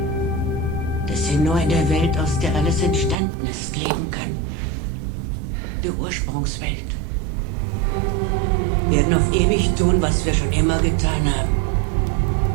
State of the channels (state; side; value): drops out; left; at 3.2 s